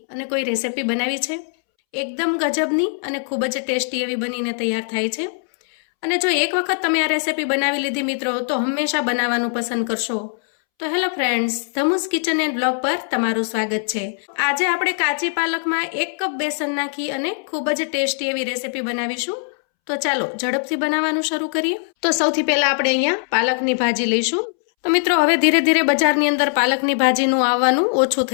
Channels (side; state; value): right; silent; 65 dB below the other